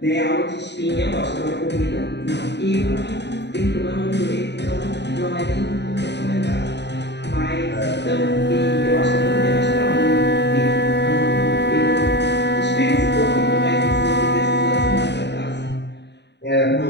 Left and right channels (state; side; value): late; right; 0.50 ms